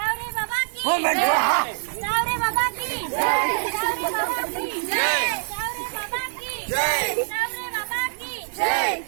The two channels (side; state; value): left; silent; digital silence